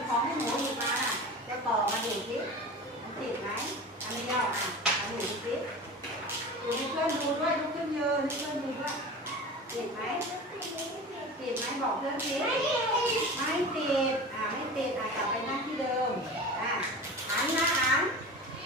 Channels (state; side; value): normal; both; correlation 0.33